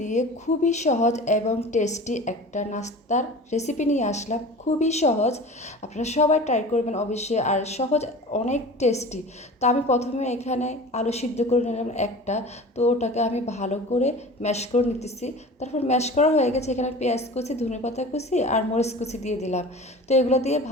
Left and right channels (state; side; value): normal; both; correlation 0.38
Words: দিয়ে খুবই সহজ এবং টেস্টি একটা নাস্তার রেসিপি নিয়ে আসলাম। খুবই সহজ, আপনারা সবাই ট্রাই করবেন অবশ্যই। আর সহজ, অনেক টেস্টি। তো আমি প্রথমে এখানে আলু সিদ্ধ করে নিলাম একটা। তো ওটাকে আমি ভালো করে ম্যাশ করে নিতেছি। তারপর ম্যাশ করা হয়ে গেছে, এখানে পেঁয়াজ কুচি, ধনেপাতা কুচি আর মরিচ কুচি দিয়ে দিলাম। তো এগুলো দিয়ে